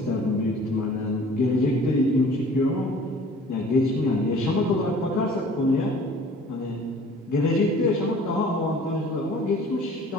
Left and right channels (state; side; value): normal; both; correlation 0.49